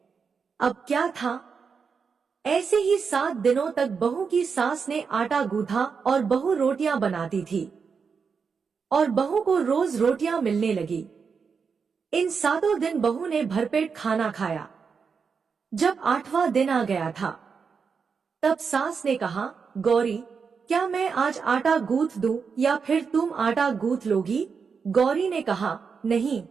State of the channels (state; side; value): quieter; left; 5.8 dB